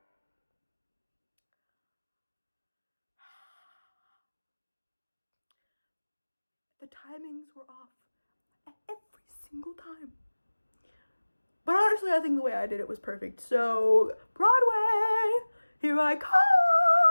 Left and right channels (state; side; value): inverted; both; correlation -1.00